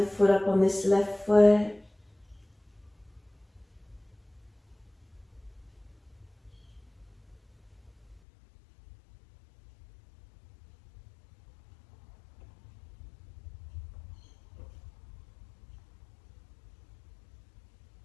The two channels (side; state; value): right; drops out; at 8.2 s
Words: foot up on this left foot.